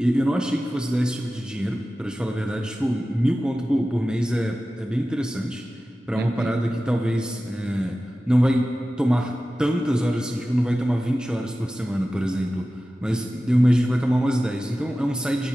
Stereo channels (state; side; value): normal; both; correlation 0.95